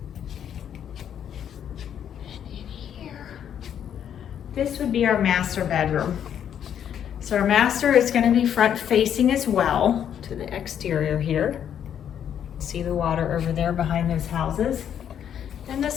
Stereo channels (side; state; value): right; quieter; 9.2 dB